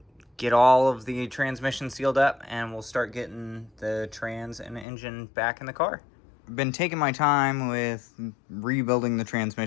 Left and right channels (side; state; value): right; drops out; at 4.9 s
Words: get all of the transmission sealed up and we'll start getting the trans and engine back in the car. I've been taking my time with rebuilding the